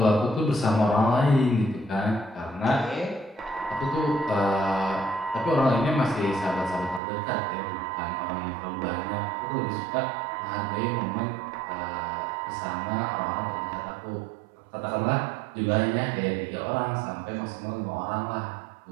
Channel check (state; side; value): drops out; left; at 7.0 s